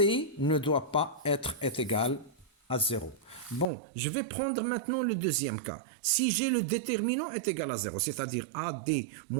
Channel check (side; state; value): left; drops out; at 3.7 s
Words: ne doit pas être égal à 0. Bon, je vais prendre maintenant le deuxième cas. Si j'ai le déterminant est égal à 0, c'est-à-dire AD